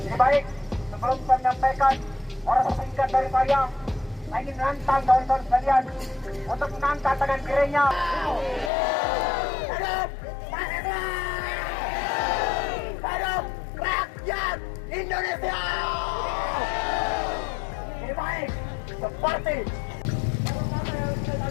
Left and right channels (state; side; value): drops out; right; at 8.7 s